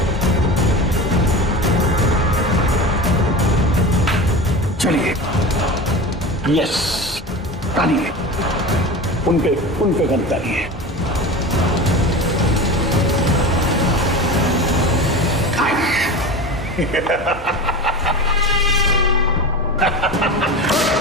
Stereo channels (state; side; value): normal; both; correlation 0.30